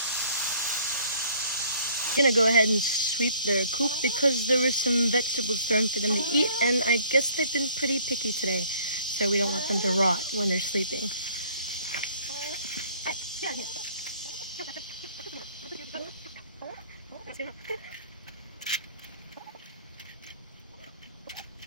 I'm gonna go ahead and sweep their coop because there were some vegetables thrown for them to eat, and I guess they've been pretty picky today, so we don't want them to rot when they're sleeping.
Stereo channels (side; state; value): both; inverted; correlation -0.57